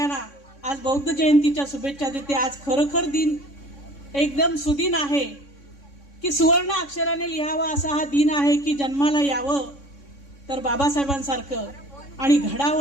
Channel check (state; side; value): late; right; 3.6 ms